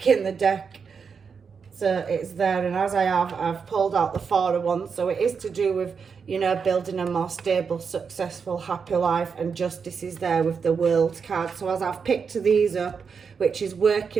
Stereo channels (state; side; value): quieter; left; 5.9 dB